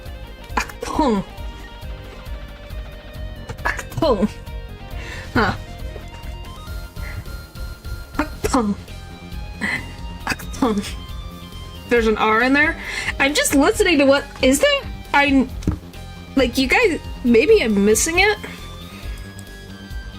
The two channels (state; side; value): identical; both; correlation 1.00